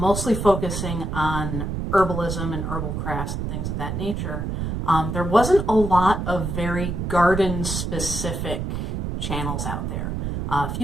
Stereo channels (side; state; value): right; noise; rumble, 3 dB below the sound